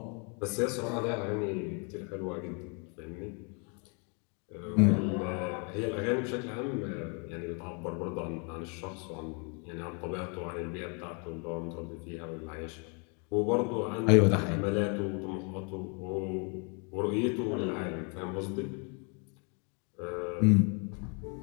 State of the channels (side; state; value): right; quieter; 36.6 dB